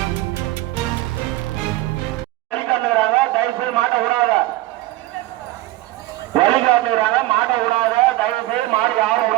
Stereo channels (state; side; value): quieter; left; 17.4 dB